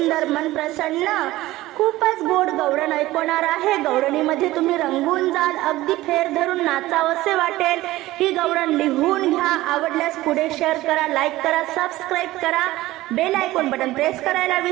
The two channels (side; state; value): left; quieter; 17.2 dB